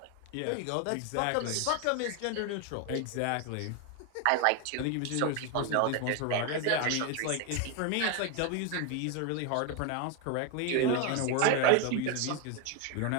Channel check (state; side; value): different; both; correlation 0.01